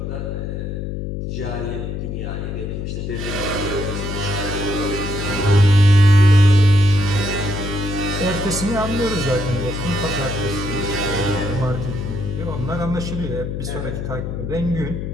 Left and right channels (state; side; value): noise; left; hum, 4 dB below the sound